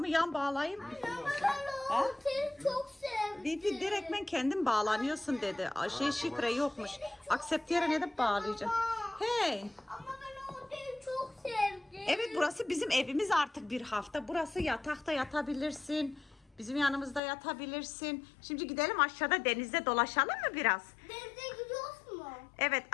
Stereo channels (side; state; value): right; drops out; at 17.2 s